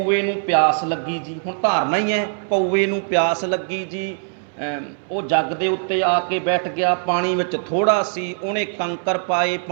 ਨੂੰ ਪਿਆਸ ਲੱਗੀ ਜੀ, ਹੁਣ ਧਾਰਨਾ ਹੀ ਹੈ, ਕਊਏ ਨੂੰ ਪਿਆਸ ਲੱਗੀ ਜੀ, ਉਹ ਜੱਗ ਦੇ ਉੱਤੇ ਆ ਕੇ ਬੈਠ ਗਿਆ, ਪਾਣੀ ਵਿੱਚ ਥੋੜ੍ਹਾ ਸੀ, ਉਹਨੇ ਕੰਕਰ ਪਾਏ,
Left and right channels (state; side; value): silent; left; 63 dB below the other